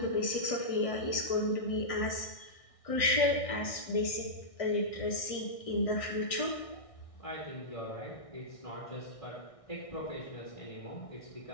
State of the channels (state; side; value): late; right; 1.6 ms